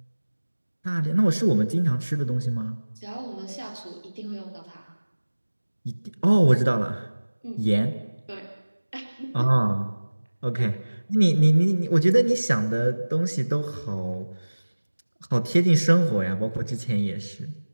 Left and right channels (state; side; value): inverted; both; correlation -1.00